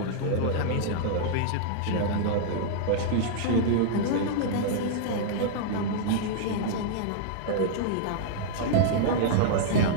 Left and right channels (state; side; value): different; both; correlation -0.02